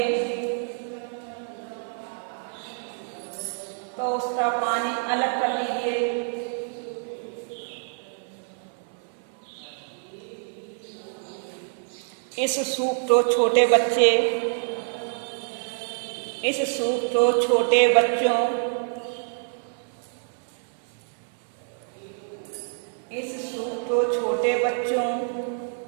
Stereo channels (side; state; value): left; silent; 60 dB below the other